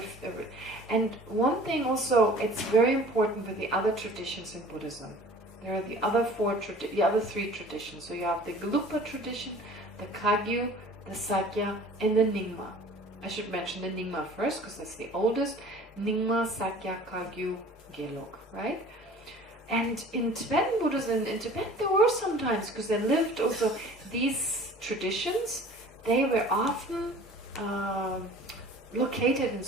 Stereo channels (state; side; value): normal; both; correlation 0.46